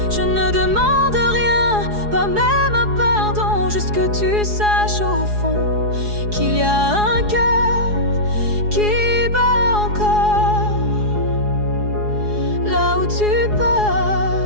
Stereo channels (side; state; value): left; late; 4.8 ms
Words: Je ne demande rien, pas même un pardon, juste que tu saches au fond qu'il y a un cœur qui bat encore là où tu